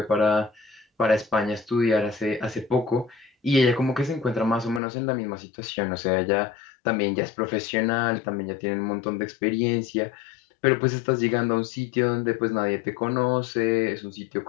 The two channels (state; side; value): drops out; right; at 4.8 s